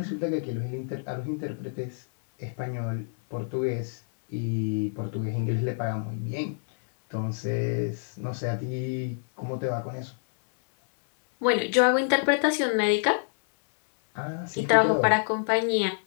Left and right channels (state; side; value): silent; right; 60 dB below the other